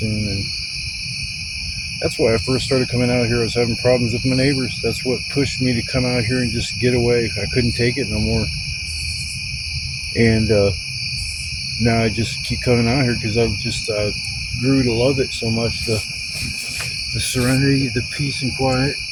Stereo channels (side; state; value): both; identical; correlation 1.00